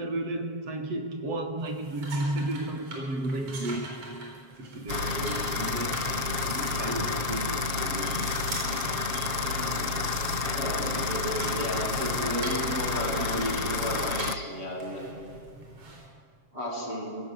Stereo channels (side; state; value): left; late; 7.5 ms